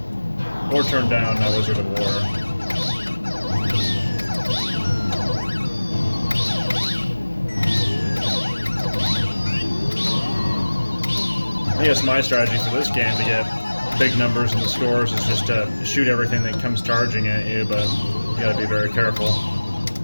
Or turn down Wizard of War. I guess my strategy for this game to get big numbers in the scores is just to shoot everything that comes charging at you, but you gotta be very careful.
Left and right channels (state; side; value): inverted; both; correlation -1.00